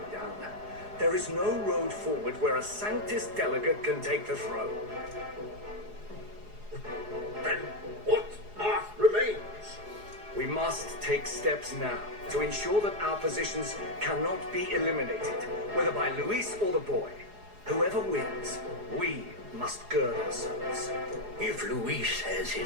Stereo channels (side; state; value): left; late; 4.8 ms